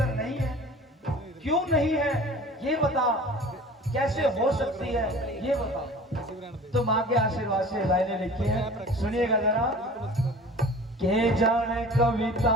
नहीं है, क्यों नहीं है ये बता, कैसे हो सकती है ये बता। तो माँ के आशीर्वाद से लाइनें लिखी है, सुनिएगा जरा। के जाने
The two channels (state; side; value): normal; both; correlation 0.42